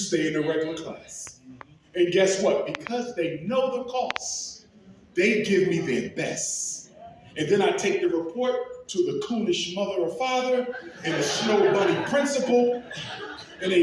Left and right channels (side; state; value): both; identical; correlation 1.00